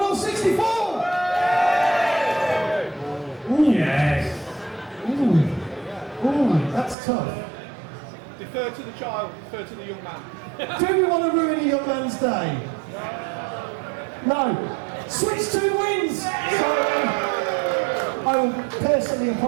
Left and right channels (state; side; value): drops out; left; at 7.0 s